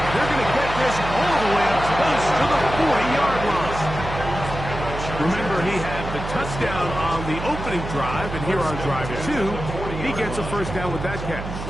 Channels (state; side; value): noise; right; hum, 7 dB below the sound